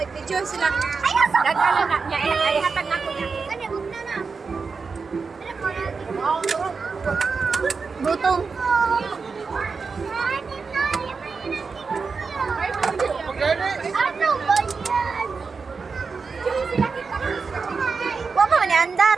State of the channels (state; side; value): quieter; left; 4.9 dB